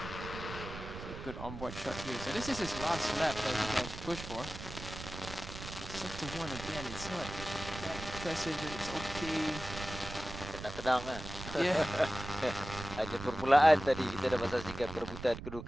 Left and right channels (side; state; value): right; noise; rumble, 10 dB below the sound